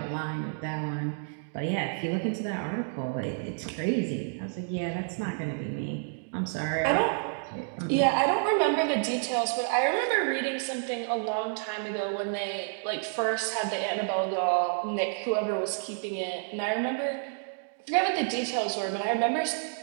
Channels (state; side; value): silent; left; 58 dB below the other